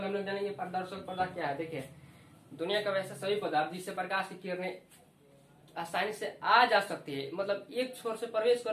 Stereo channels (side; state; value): both; identical; correlation 1.00